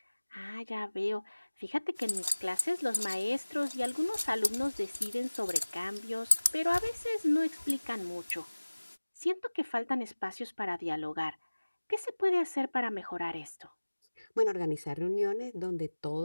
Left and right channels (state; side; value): inverted; both; correlation -1.00